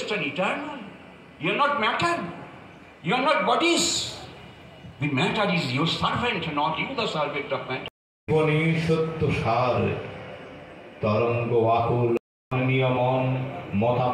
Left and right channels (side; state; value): both; identical; correlation 1.00